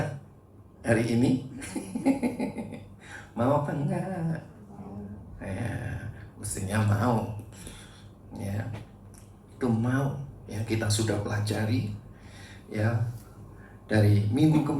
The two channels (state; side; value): identical; both; correlation 1.00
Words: hari ini? Mau apa enggak? Ya, mestinya mau. Ya, itu mau. Ya, kita sudah pelajari. Ya, dari minggu ke